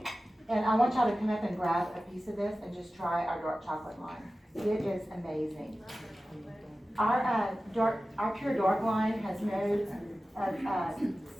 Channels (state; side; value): normal; both; correlation 0.95